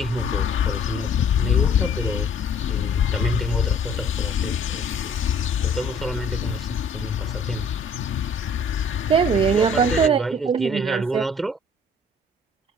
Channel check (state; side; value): normal; both; correlation 0.55